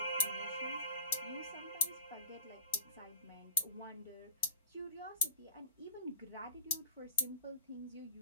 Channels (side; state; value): both; inverted; correlation -0.45